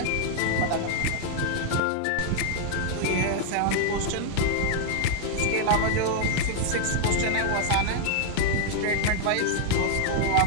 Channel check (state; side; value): different; both; correlation -0.01